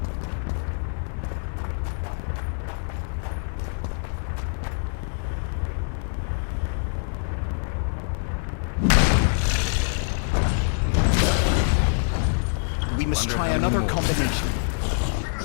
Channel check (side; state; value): right; silent; digital silence